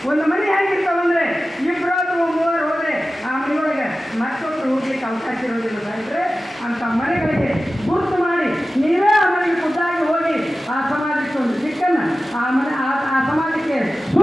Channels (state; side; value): normal; both; correlation 0.95